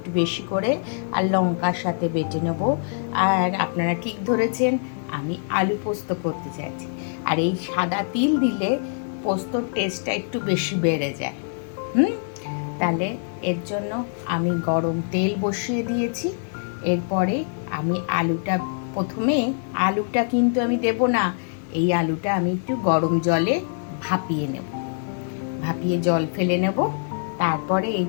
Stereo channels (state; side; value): silent; right; 63 dB below the other